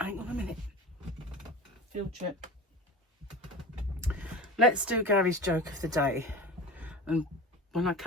on a minute. Field trip. Let's do Gary's joke of the day. And when I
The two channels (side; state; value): both; normal; correlation 0.33